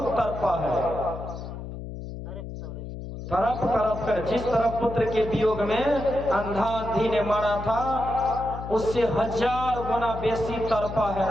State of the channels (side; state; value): left; noise; hum, 9 dB below the sound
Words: तड़पा है। तरफ तरफ कर, जिस तरफ पुत्र के वियोग में अंधा अंधी ने मारा था उससे 1000 गुना बेसी तड़पा है